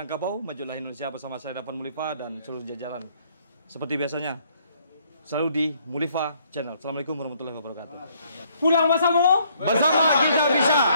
majulah Indonesia bersama saya Dapan Mulifa dan seluruh jajaran. Seperti biasanya selalu di Mulifa Channel. Assalamualaikum warahmatullahi wabarakatuh. Pulang bersama. Bersama kita bisa.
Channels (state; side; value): inverted; both; correlation -0.66